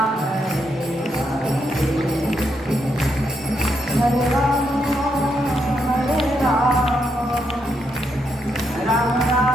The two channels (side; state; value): both; normal; correlation 0.79